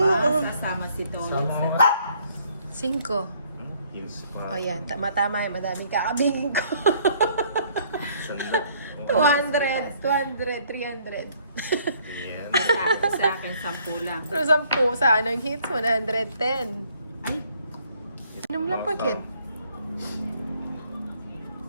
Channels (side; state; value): both; inverted; correlation -0.63